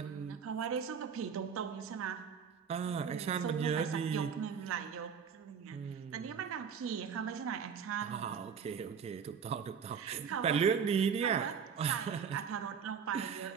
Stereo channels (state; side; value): quieter; left; 6.9 dB